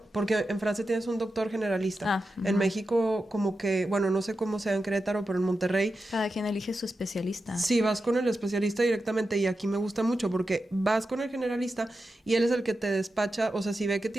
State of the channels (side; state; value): both; normal; correlation 0.90